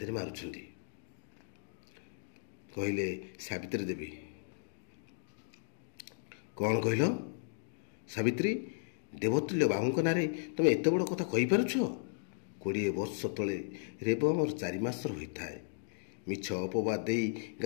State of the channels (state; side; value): silent; right; digital silence